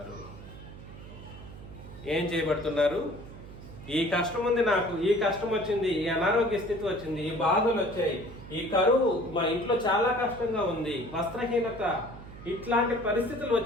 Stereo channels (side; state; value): right; noise; hum, 15 dB below the sound